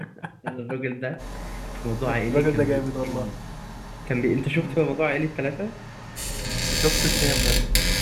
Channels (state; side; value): identical; both; correlation 1.00